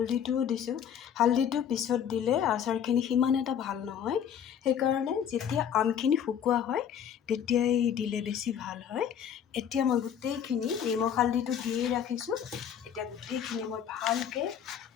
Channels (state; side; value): quieter; right; 8.7 dB